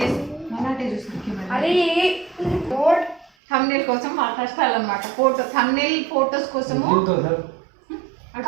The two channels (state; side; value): drops out; left; at 3.3 s